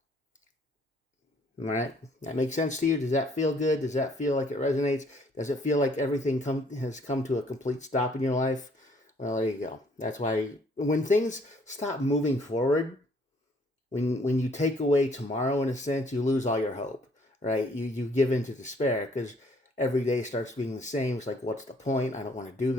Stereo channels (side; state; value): both; normal; correlation 0.63